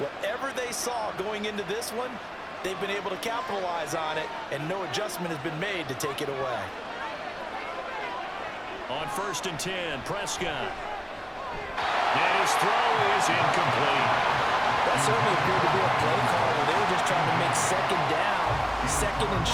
they saw going into this one, they've been able to capitalize on it, and no adjustment has been made to take it away. On 1st and 10, Prescott. And his throw is incomplete. That certainly appeared to be a play call where they were just trying to make second down, second and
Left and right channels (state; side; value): identical; both; correlation 1.00